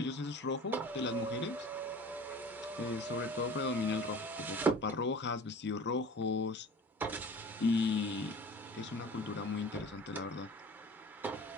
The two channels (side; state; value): both; normal; correlation 0.41